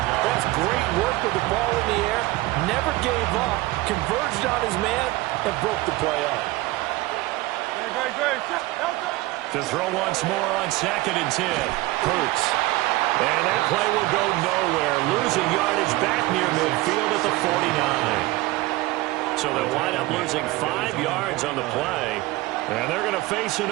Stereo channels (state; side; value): quieter; left; 19.4 dB